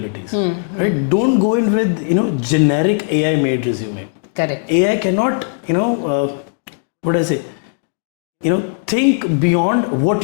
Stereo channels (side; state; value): right; silent; digital silence